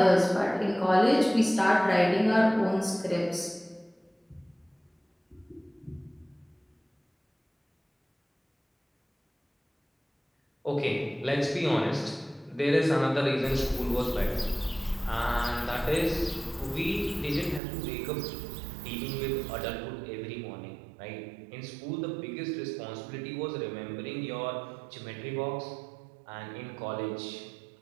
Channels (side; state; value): left; drops out; at 17.6 s